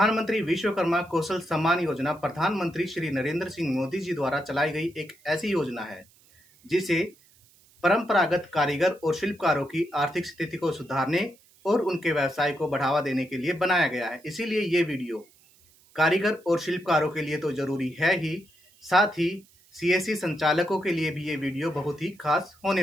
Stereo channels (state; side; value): noise; right; hiss, 30 dB below the sound